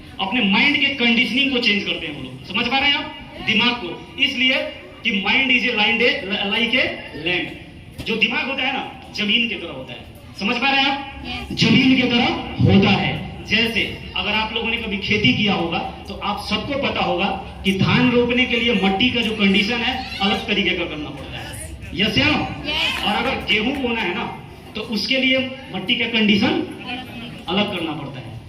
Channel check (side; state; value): both; identical; correlation 1.00